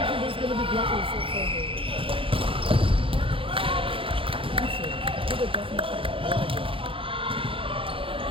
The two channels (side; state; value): left; late; 0.26 ms